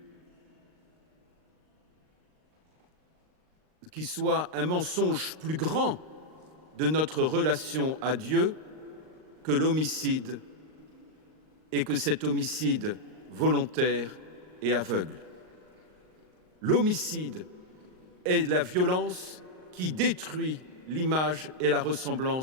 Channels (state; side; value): late; left; 38 ms